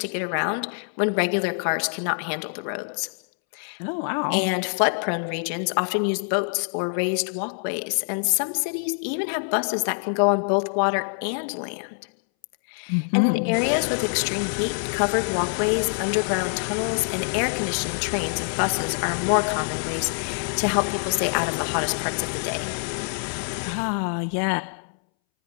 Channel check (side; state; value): right; silent; 62 dB below the other